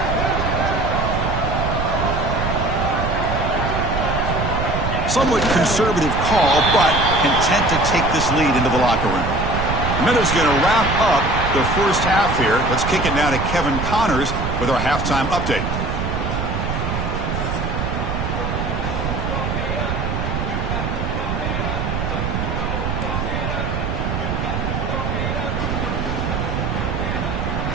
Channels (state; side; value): noise; right; rumble, 2 dB below the sound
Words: Somewhat conservative call, but content to take this lead into the locker room. The Minutes going to wrap up the first half here. Let's kick it now to Kevin Connors with our halftime update.